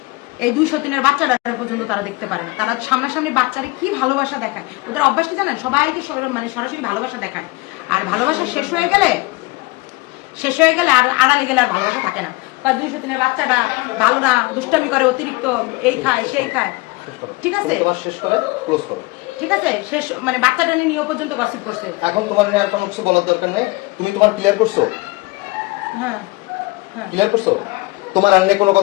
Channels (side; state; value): right; quieter; 23.4 dB